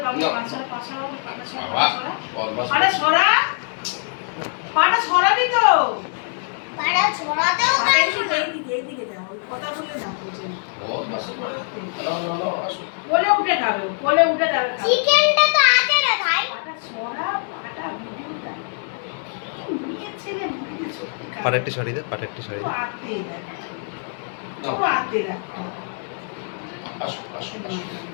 বাবা পাঁচশোরা আরে সরা পাটা সরাবি তো পাটা ছড়াতেও এইদিকে যাও কথা বলে না বলছে ও বাস কোলে উঠে খাবে কোলে উঠে যাবে চিকেনটা তো আছে রে ভাই পাটা সরা পাটা ভিডিওটা নিয়ে ছেলে মুখে সত্যি পাটাটি শাড়ি দে পাটাটি শাড়ি দে আতে রাখ আসো আসো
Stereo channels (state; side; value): silent; right; 62 dB below the other